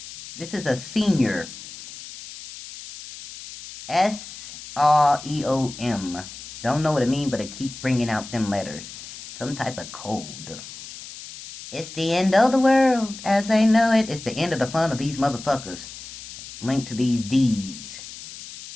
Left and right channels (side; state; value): left; noise; hiss, 13 dB below the sound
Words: This is a senior. S-R-E-O-M. Don't know what it means, but it keeps bringing out them letters. Some type of code. It's the end of the world as I know it. It's the end of the fun of these motherfuckers. Linked to these deeds.